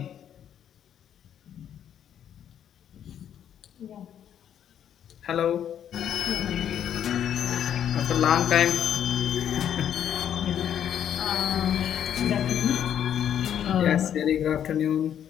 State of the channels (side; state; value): right; quieter; 9.6 dB